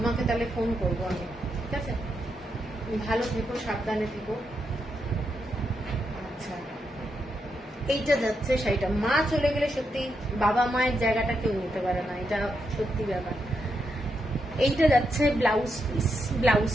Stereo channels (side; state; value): both; normal; correlation 0.82